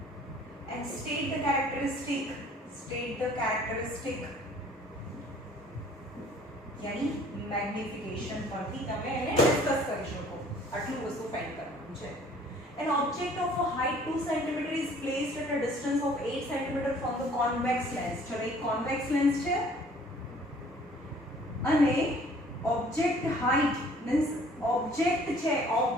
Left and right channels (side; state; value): both; normal; correlation 0.55